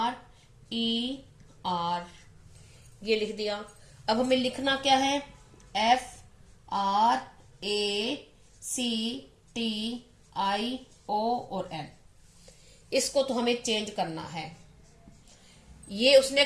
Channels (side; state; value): both; identical; correlation 1.00